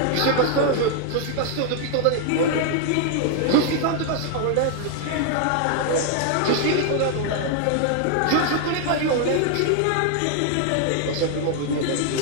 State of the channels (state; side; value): different; both; correlation 0.00